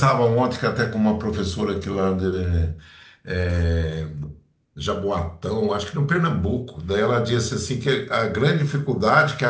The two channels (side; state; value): both; identical; correlation 1.00